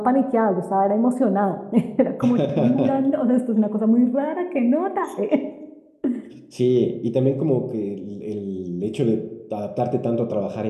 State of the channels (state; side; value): identical; both; correlation 1.00